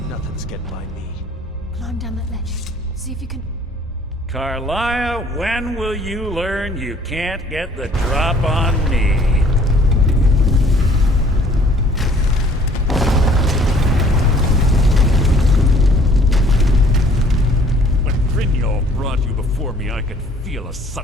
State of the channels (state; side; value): normal; both; correlation 0.57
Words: Nothing's getting by me. Climb down that ledge. See if you can... Carlia, when will you learn you can't get the drop on me? When Brynjolf brought you before me, I could feel a